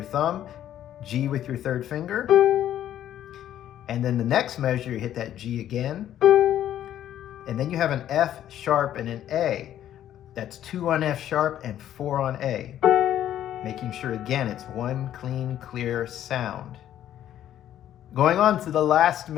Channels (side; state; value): right; quieter; 11.4 dB